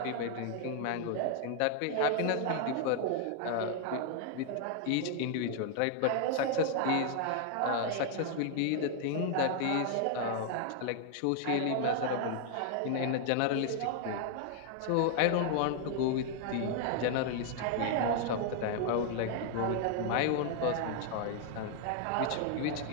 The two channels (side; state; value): both; different; correlation 0.00